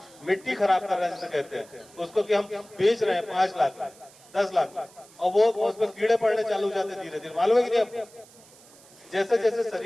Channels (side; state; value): right; noise; hiss, 24 dB below the sound